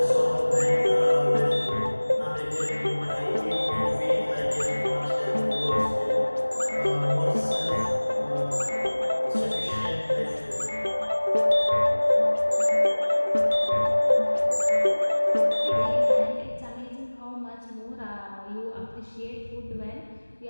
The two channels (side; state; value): both; inverted; correlation -1.00